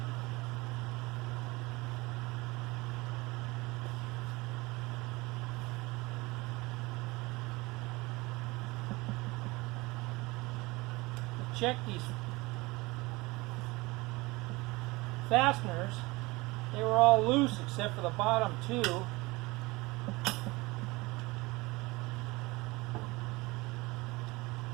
Check these fasteners. They were all loose except for the bottom two. Let's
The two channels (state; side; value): quieter; left; 22.8 dB